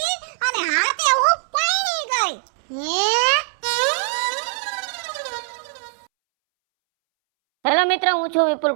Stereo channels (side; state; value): left; silent; 65 dB below the other